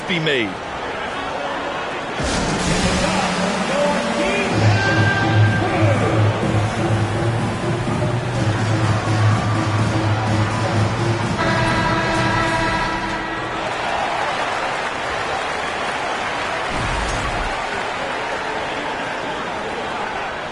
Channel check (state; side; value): identical; both; correlation 1.00